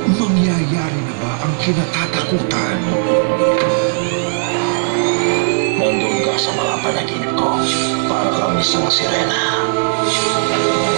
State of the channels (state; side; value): silent; left; digital silence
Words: Mangyayari na ba ang kinatatakutan? Nandun ka sa mga panaginip ko para kang isang sirena.